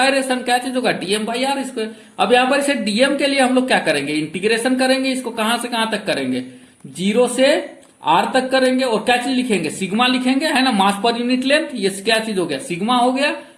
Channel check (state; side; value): identical; both; correlation 1.00